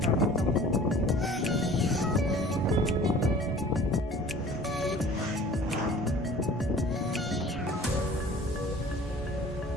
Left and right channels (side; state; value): both; normal; correlation 0.47